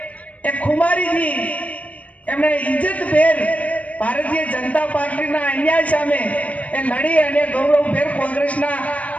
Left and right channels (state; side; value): late; right; 0.067 ms